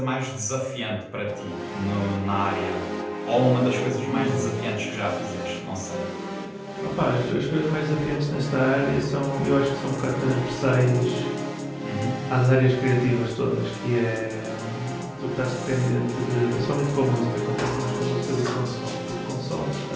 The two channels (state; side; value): identical; both; correlation 1.00